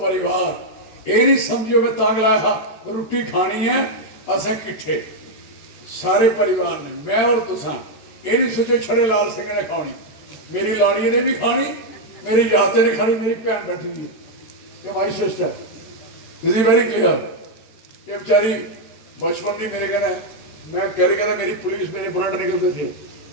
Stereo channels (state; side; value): late; right; 14 ms